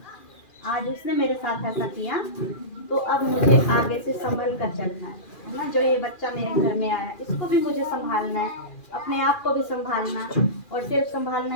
आज उसने मेरे साथ ऐसा किया, तो अब मुझे आगे से संभल कर चलना है ना, जो ये बच्चा मेरे घर में आया है, इसको भी मुझे संभालना है, अपने आप को भी संभालना, और सिर्फ संभालना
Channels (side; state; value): right; late; 2.4 ms